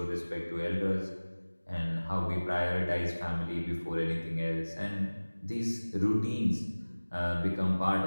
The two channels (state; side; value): inverted; both; correlation -1.00